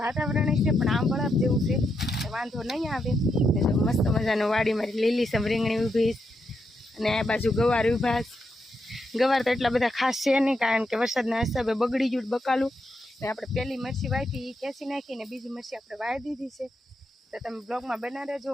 વાતાવરણ છે પણ આમ બરાબ જેવું છે વાંધો નહીં આવે ને જો મસ્ત મજાનું વાડી મારી લીલીસમ રીંગણી ઊભી અને આ બાજુ ગવાર ઊભા ગવાર તો એટલા બધા ખાસ છે નહીં કારણ કે વરસાદના હિસાબે બગડી ગયું બકાલું ને આપણે પહેલી મરચી વાવી એ ખેંચી નાખીને બીજી મરચી આપણે વાવી દીધી છે। તો તમે બ્લોગમાં બના રહેજો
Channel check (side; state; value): both; normal; correlation 0.82